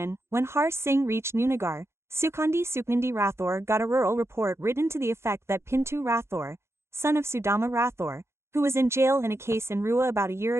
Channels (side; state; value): left; late; 0.13 ms